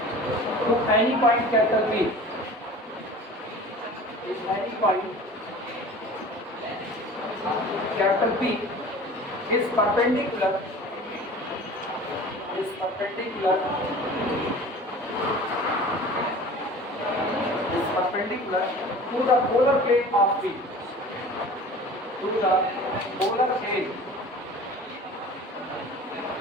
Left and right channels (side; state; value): both; normal; correlation 0.41